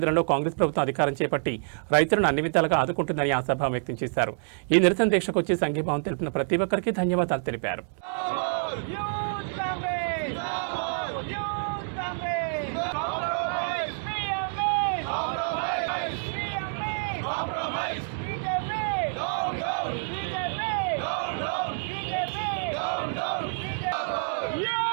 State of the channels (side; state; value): left; silent; digital silence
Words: కాంగ్రెస్ ప్రభుత్వం అధికారం చేపట్టి రైతులను అన్ని విధాలుగా ఆదుకుంటుందని ఆశాభావం వ్యక్తం చేశారు. ఈ నిరసన దీక్షకు వచ్చి సంఘీభావం తెలిపిన ప్రతి ఒక్కరికి ధన్యవాదాలు తెలిపారు.